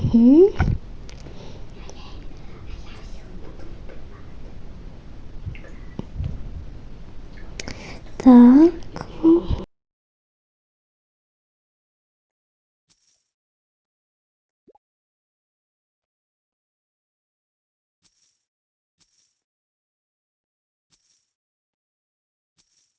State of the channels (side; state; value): both; identical; correlation 1.00